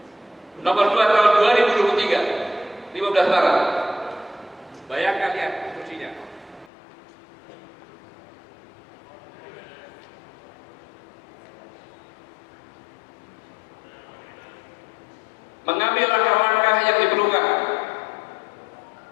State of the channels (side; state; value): right; drops out; at 6.7 s